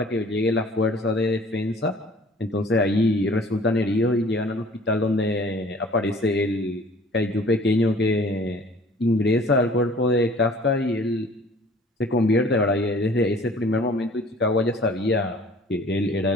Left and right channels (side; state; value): both; normal; correlation 0.51